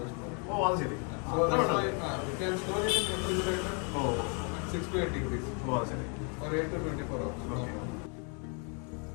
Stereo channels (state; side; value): quieter; right; 37.3 dB